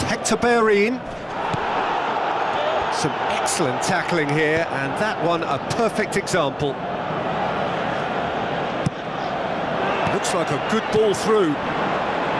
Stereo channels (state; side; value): identical; both; correlation 1.00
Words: Hector Bellerin. Some Excellent tackling here, and that one a perfect example. Looks like a good ball through.